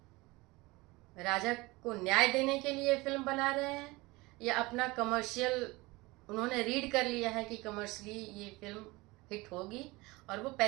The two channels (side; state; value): left; quieter; 22.5 dB